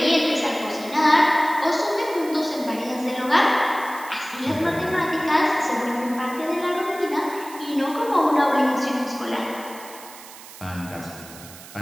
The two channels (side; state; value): right; noise; hiss, 17 dB below the sound